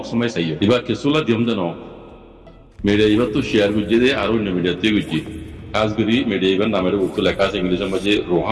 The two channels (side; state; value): both; identical; correlation 1.00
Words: মাই চাইও এবার কিছুলা দিম দেন মেডে ইবার তো শেয়ার গুজি দে আর অন্য মিডিয়াতে গুজি আজগরি মেডে ইবার নামের উত্তর লেখা আছে ইংলিশের মাঝে